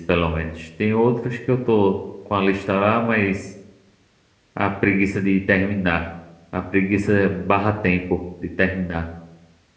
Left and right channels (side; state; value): both; identical; correlation 1.00